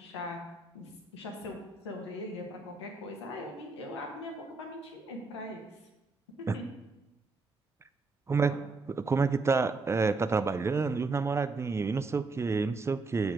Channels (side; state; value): left; quieter; 3.8 dB